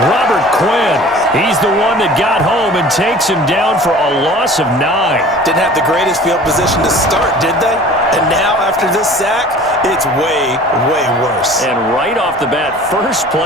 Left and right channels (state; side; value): normal; both; correlation 0.44